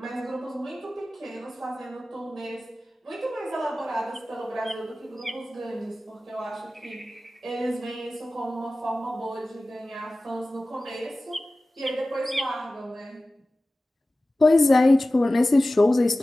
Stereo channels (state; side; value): normal; both; correlation 0.96